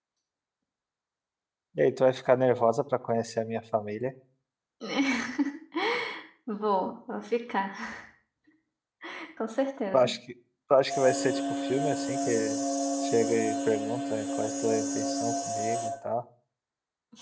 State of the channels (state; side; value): identical; both; correlation 1.00